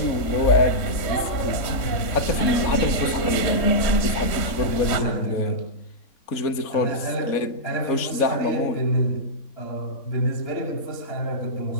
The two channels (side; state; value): right; late; 3.6 ms